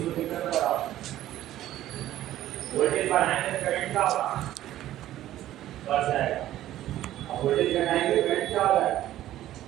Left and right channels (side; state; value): left; quieter; 13.6 dB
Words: को दिक्कत बताओ वोल्टेज बढ़ाने से करंट क्या होगा बढ़ जाएगा वोल्टेज घटाएंगे करंट क्या होगा